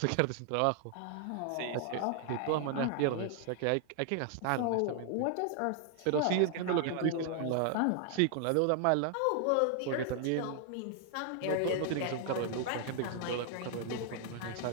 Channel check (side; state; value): both; different; correlation 0.00